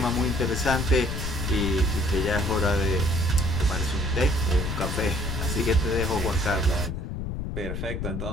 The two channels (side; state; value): left; noise; rumble, 3 dB below the sound